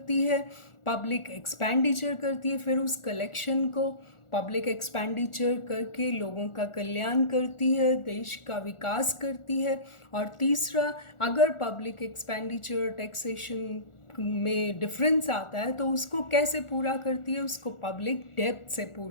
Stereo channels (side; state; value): right; late; 1.4 ms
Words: है, पब्लिक एक्सपेंडिचर करती है, फिर उस कलेक्शन को पब्लिक एक्सपेंडिचर करके लोगों का कल्याण करती है, देश का विकास करती है। और तीसरा, अगर पब्लिक एक्सपेंडिचर टैक्सेशन में डिफरेंस आता है तो उसको कैसे पूरा करती है, उसको पब्लिक डेब्ट से